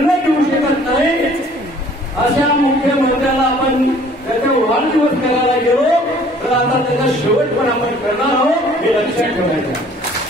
घेऊ शकत नाही, अशा मुख्यमंत्र्याला आपण त्याचा वाढदिवस करायला गेलो तर आता त्याचा शेवट पण आपण करणार आहोत हे लक्षात ठेवायचं।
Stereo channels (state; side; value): normal; both; correlation 0.54